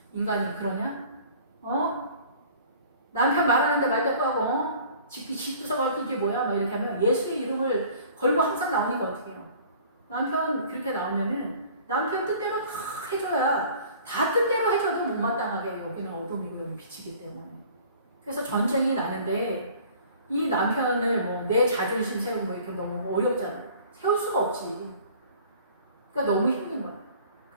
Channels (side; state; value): both; inverted; correlation -0.49